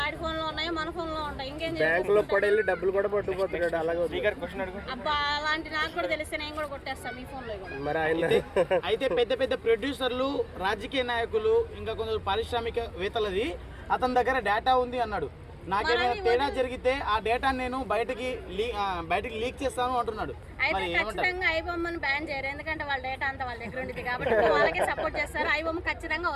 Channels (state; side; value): identical; both; correlation 1.00